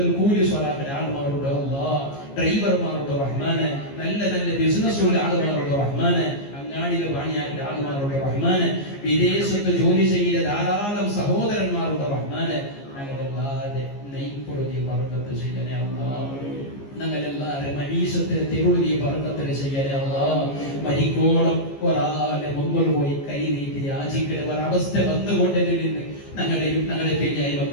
കൂലി സ്വലാത്തിന്റെ ആളുമാരുണ്ട് അല്ലാഹ്, ഡ്രൈവർമാരുണ്ട് റഹ്മാനെ, നല്ല നല്ല ബിസിനസ്സുള്ള ആളുമാരുണ്ട് റഹ്മാനെ, അങ്ങാടിയിലെ പണിയാക്കിയ ആളുമാരുണ്ട് റഹ്മാനെ, വിദേശത്ത് ജോലി ചെയ്യുന്ന ധാരാളം സഹോദരന്മാരുണ്ട് റഹ്മാനെ. ഞങ്ങളെല്ലാവരുടെ നെയ്പ്പൊരു നീ ബർക്കത്ത് ചെയ്യണേ അല്ലാഹ്. ഞങ്ങളെല്ലാവരുടെ മരീസത്തിന് തെരുവ് നീ ബർക്കത്ത് ചെയ്യണേ അല്ലാഹ്. മരിക്കോളം ഒരാളെ മുന്നിൽ പോയി കൈ നീട്ടി യാചിക്കുന്ന ഒരവസ്ഥ വന്നുകൊണ്ടതിൽ നിന്ന് ഞങ്ങളെയും ഞങ്ങളുടെ പെരിയായി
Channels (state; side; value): late; right; 15 ms